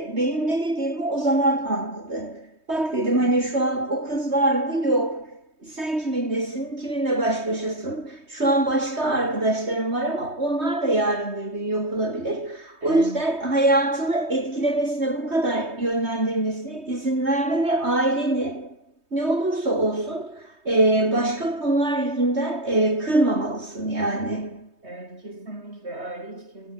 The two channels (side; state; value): left; late; 3.2 ms